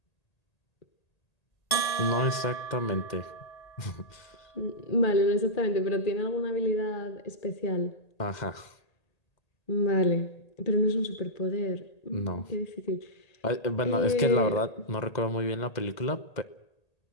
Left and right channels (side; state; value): right; late; 1.8 ms